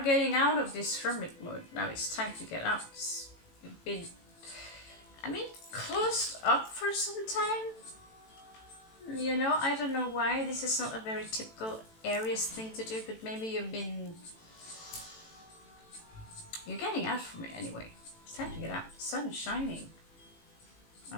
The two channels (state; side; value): late; right; 18 ms